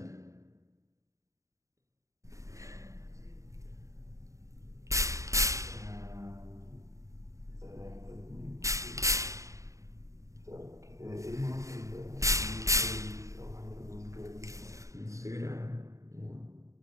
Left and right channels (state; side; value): late; left; 0.15 ms